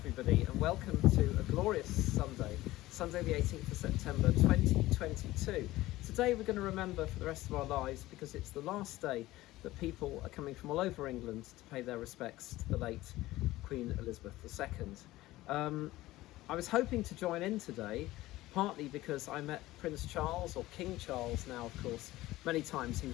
and welcome to a glorious Sunday, Sunday the 18th of September 2022. Today we're going to remember for the rest of our lives because it's the last day that people are coming from all over England to pay their respects to the late Queen Elizabeth II. I was hoping to join in today, partly because I met Prince Charles, or King Charles now of course, many times. He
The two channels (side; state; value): right; quieter; 17.2 dB